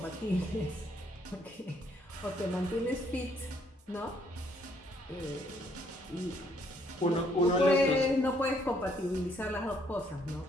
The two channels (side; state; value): both; normal; correlation 0.68